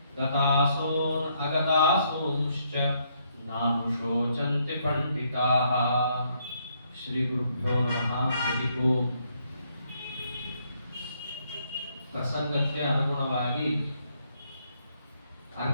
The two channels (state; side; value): inverted; both; correlation -0.72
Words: गतासून् अगतासूंश्च नानुशोचन्ति पण्डिताः। श्रीगुरुभ्यो नमः। हरिः ओम्। ಪ್ರಸಂಗಕ್ಕೆ ಅನುಗುಣವಾಗಿ